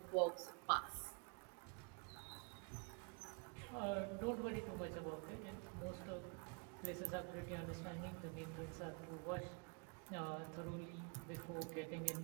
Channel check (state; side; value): quieter; left; 36.4 dB